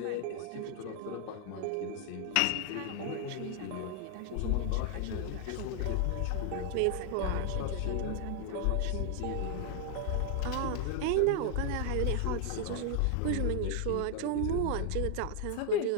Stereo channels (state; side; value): different; both; correlation 0.00